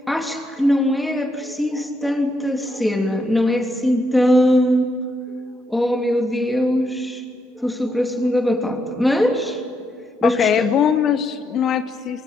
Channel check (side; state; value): both; normal; correlation 0.79